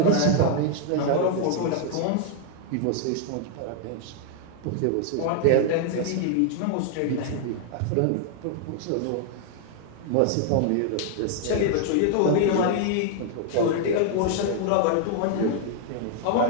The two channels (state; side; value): different; both; correlation 0.00